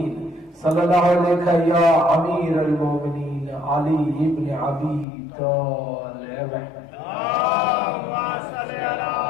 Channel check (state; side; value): drops out; right; at 5.1 s